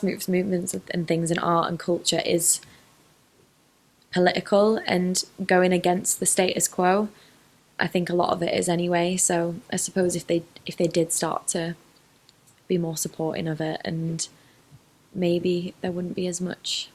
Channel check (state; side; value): identical; both; correlation 1.00